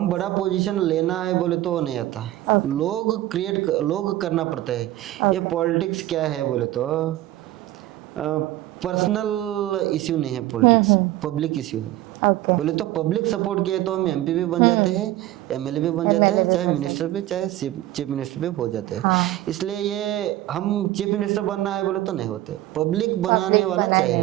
बड़ा पोजीशन लेना है बोले तो वो नहीं आता। लोग करना पड़ता है। ये पॉलिटिक्स क्या है बोले तो पर्सनल इश्यू नहीं है, पॉलिटिक्स पब्लिक इश्यू है। बोले तो पब्लिक सपोर्ट किए तो हम एमपी भी बन जाते हैं, एमएलए भी बन जाते हैं, चाहे मिनिस्टर भी, चाहे चीफ मिनिस्टर भी हो जाते हैं। इसलिए ये हम चीफ मिनिस्टर बनना है बोले तो नहीं होते, पब्लिक बनाने वाला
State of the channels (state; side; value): quieter; left; 15.3 dB